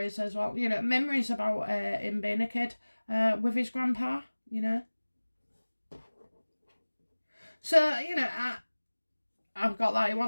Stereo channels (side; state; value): both; inverted; correlation -1.00